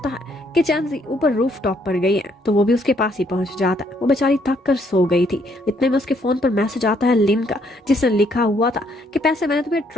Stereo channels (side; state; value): both; normal; correlation 0.69